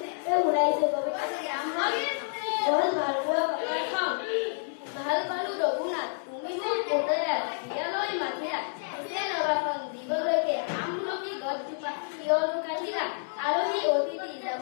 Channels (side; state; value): right; silent; 59 dB below the other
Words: শুনাইছো। কবিতাটোৰ নাম হ'ল গছ ভাল পোৱা কথাৰ কওঁ। ভাল পালো ৰঘুনাথ তুমি মোক পুতেৰাৰ বিয়ালৈ মাতিলা, পিছে ৰবাখন দিবলৈকে আমলখি গছজোপা কিয়নো কাটিলা। আলহী অতিথি